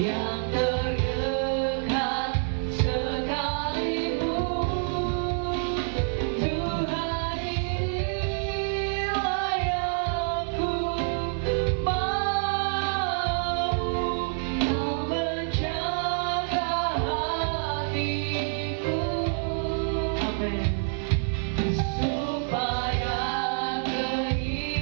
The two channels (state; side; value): silent; left; 55 dB below the other